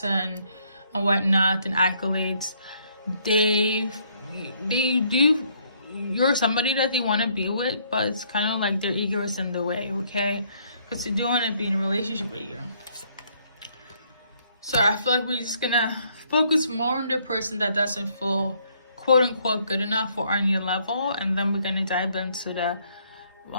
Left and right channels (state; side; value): inverted; both; correlation -0.67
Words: and whatnot and accolades, they do, you're somebody that they want to be with, but it's kind of like their ego is in the way, okay? Because they do want to be in a relationship with you. So I feel like we're just gonna focus more on the person that doesn't feel quote unquote good enough or on your level, and then we're gonna dive into the